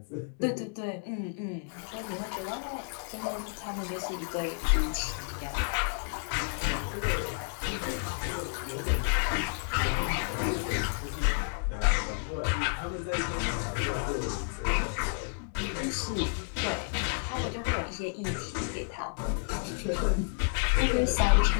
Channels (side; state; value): right; silent; 57 dB below the other